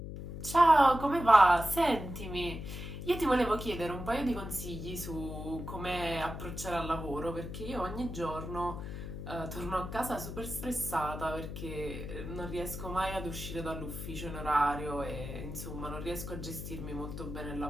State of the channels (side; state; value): left; noise; hum, 8 dB below the sound